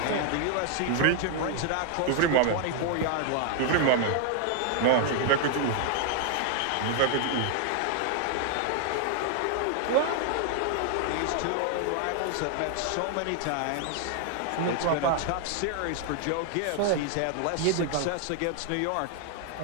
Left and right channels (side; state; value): both; different; correlation 0.00